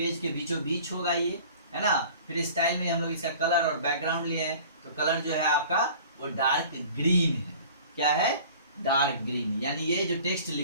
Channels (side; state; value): both; inverted; correlation -0.45